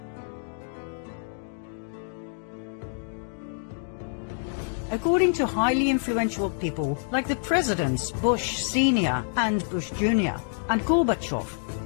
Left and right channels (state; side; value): silent; right; digital silence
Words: According to highly influential people like the presidents Bush Sr. and Bush Jr. and Gorbachev,